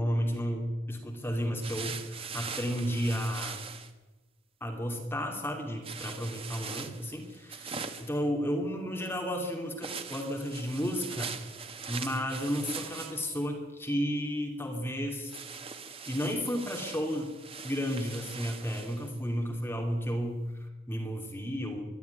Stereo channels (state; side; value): normal; both; correlation 0.75